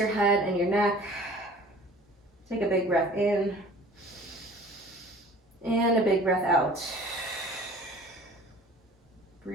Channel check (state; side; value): normal; both; correlation 0.47